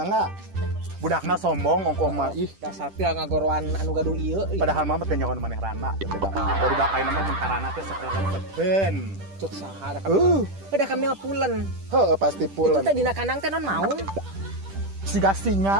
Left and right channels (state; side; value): late; left; 10 ms